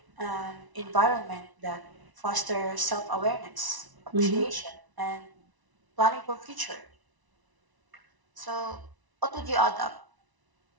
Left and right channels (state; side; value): late; left; 1.0 ms